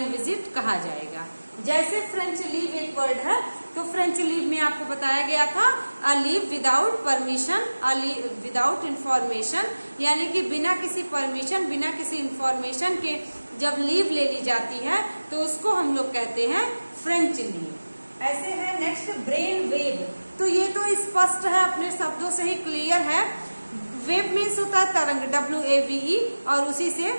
विजिट कहा जाएगा। जैसे फ्रेंच लीव एक वर्ड है, तो फ्रेंच लीव में आपको बताया गया था a leave without permission, a leave without information, यानी कि बिना किसी परमिशन, बिना किसी इंफॉर्मेशन के जब लीव ले ली जाती है तो उसको हम लोग कहते हैं फ्रेंच लीव। ऐसे है नेक्स्ट ब्रेन वेव, तो ये तो स्पष्ट है, अपने शब्दों से ही क्लियर है। वेव मीन्स होता है तरंग, WAVE, और उसी से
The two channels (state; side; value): inverted; both; correlation -1.00